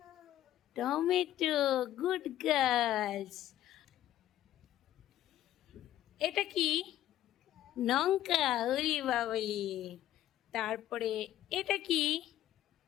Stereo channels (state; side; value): quieter; right; 12.8 dB